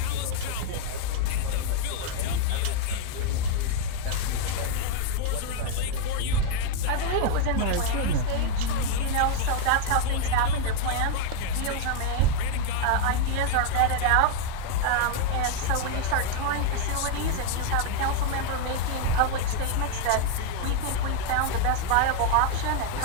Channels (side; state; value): both; different; correlation 0.00